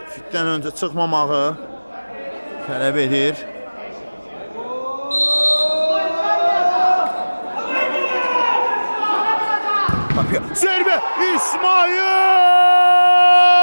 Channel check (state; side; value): inverted; both; correlation -1.00